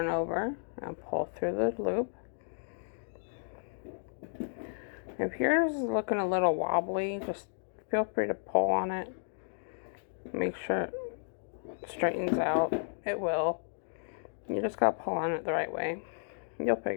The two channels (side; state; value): right; silent; digital silence